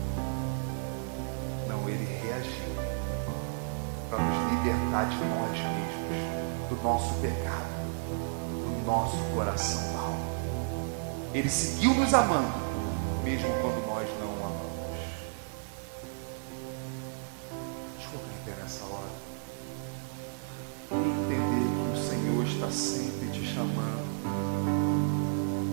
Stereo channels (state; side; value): silent; left; 56 dB below the other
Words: Não, ele reagiu para nos libertar de nós mesmos, do nosso pecado, do nosso coração mau. Ele seguiu nos amando, mesmo quando nós não o amamos. Deixa eu colocar em pé nessa hora e entender que o Senhor está sempre te chamando